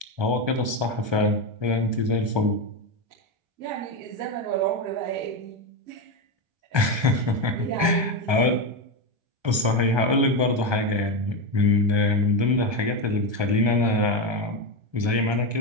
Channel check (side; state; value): left; late; 1.3 ms